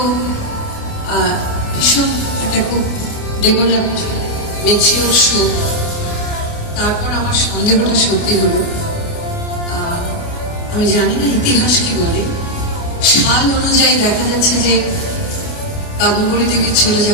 ভীষণ একটা খুব ডেভেলপড ম্যাচিওর শো। তারপর আমার সন্দেহটা সত্যি হলো। আমি জানি না ইতিহাস কি বলে, সাল অনুযায়ী দেখা যাচ্ছে যে কাদম্বরী দেবীর চলে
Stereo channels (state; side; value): late; right; 29 ms